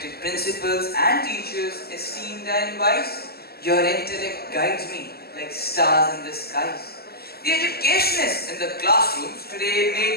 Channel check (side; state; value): right; late; 0.46 ms